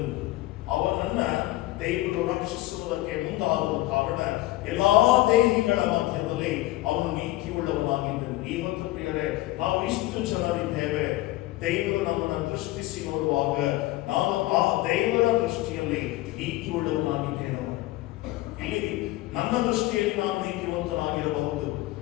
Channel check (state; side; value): quieter; right; 17.7 dB